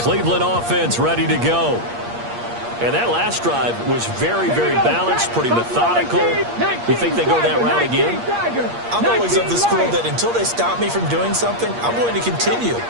offense ready to go. And that last drive was very, very balanced, pretty methodical. You think they go that route again? I'm always of the school that until they stop me from doing something, I'm going to continue.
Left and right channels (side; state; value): left; late; 8.5 ms